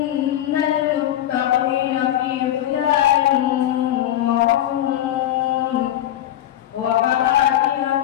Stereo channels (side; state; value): right; quieter; 12.4 dB